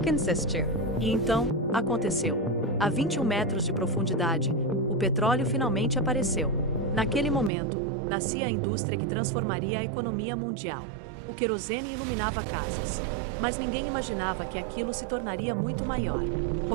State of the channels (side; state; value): left; drops out; at 7.5 s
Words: insistiu. E então, aconteceu. A 21 metros de profundidade, o petróleo finalmente apareceu. Naquele momento, nascia a indústria que transformaria a economia mundial. O querosene iluminava casas. Mas ninguém imaginava que aquilo se tornaria muito maior.